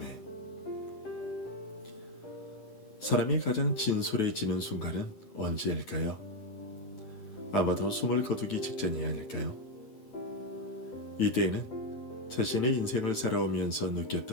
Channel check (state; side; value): late; right; 9.2 ms